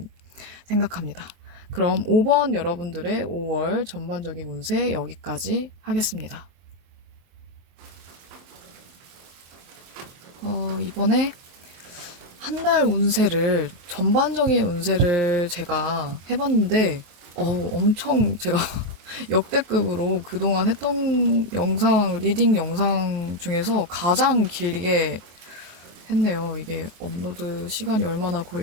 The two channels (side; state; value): left; late; 23 ms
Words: 생각합니다. 그럼 5번 여러분들의 5월 전반적인 운세 여기까지 하겠습니다. 이번에 한 달 전반적인 운세를 제가 해봤는데, 엄청 제가 역대급으로 그동안 했던 리딩 영상 중에서 가장 길게 했네요. 이게 업로드 시간이 얼마나